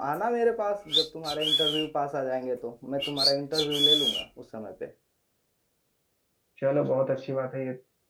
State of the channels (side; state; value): both; identical; correlation 1.00